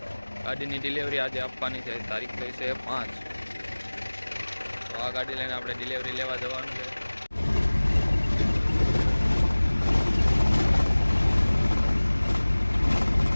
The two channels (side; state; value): both; inverted; correlation -1.00